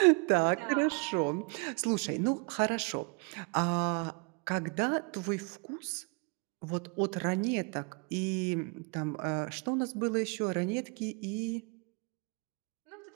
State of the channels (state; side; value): quieter; left; 32.8 dB